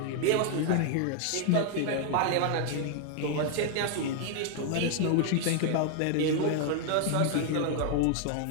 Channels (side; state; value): both; different; correlation 0.00